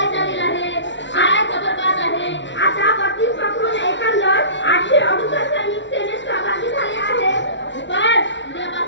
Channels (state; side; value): late; right; 0.53 ms